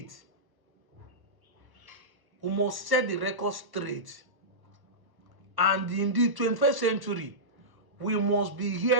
We must set the record straight. And in the 21st century, we must be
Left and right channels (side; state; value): left; late; 1.0 ms